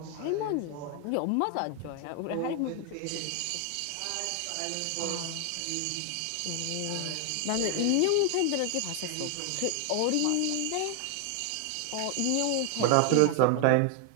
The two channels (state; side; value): different; both; correlation 0.00